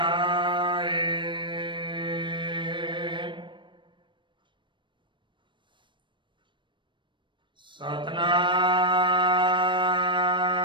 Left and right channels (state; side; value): late; left; 0.23 ms